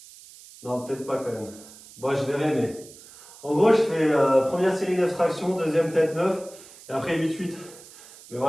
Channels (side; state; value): right; noise; hiss, 20 dB below the sound